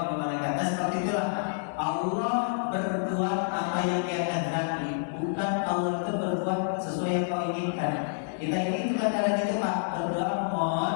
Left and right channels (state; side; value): silent; right; digital silence